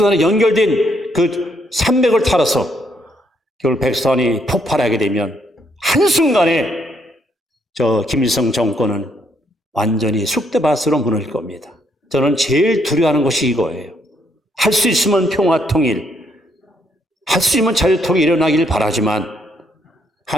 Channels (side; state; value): both; normal; correlation 0.73